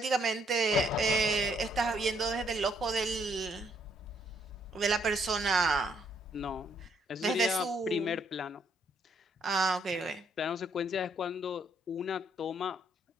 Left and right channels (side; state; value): both; normal; correlation 0.70